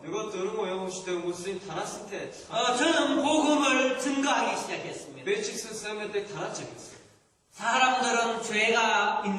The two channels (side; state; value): both; identical; correlation 1.00